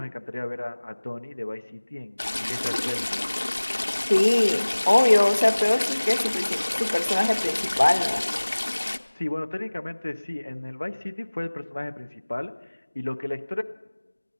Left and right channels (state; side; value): inverted; both; correlation -1.00